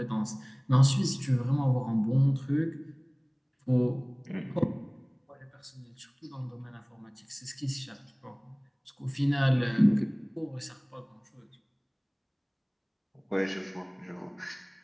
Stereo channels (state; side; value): identical; both; correlation 1.00